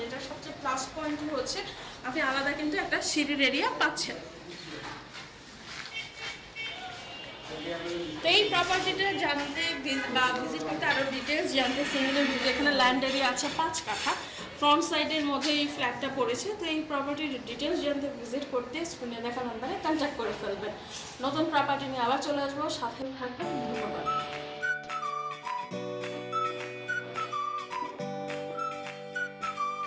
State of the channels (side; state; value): both; identical; correlation 1.00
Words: এটা সবচেয়ে প্লাস পয়েন্ট হচ্ছে আপনি আলাদা কিন্তু একটা সিঁড়ির এরিয়া পাচ্ছেন। তো এই প্রপার্টিটা জানতে বা ভিজিট করতে আরও ডিটেলস জানতে সিঙ্গেলের ভিডিও, এখানে ল্যান্ড এরিয়া আছে 5 কাঠা, ফ্রন্ট সাইডের মধ্যে এই ফ্ল্যাটটা পড়েছে। তো এই প্রপার্টির ডিটেলস জানতে ভিজিট করতে স্ক্রিনে দেখা নাম্বারে কন্ট্যাক্ট করে ফেলবেন। নতুন প্রপার্টি নিয়ে আবার চলে আসবো, সাথে থাকবেন। ধন্যবাদ।